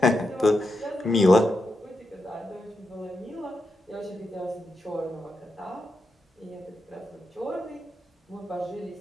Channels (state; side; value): normal; both; correlation 0.86